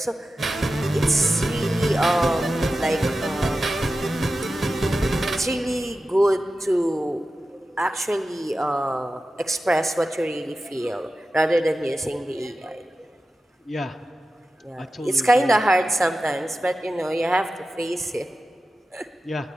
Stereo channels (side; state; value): both; normal; correlation 0.93